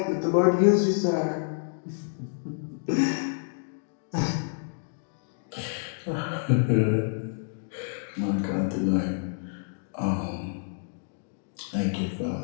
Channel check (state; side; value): silent; right; digital silence